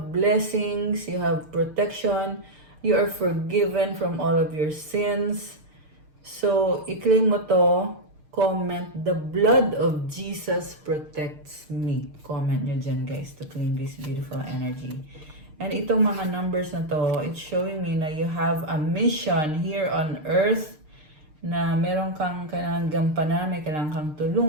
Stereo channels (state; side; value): late; left; 6.6 ms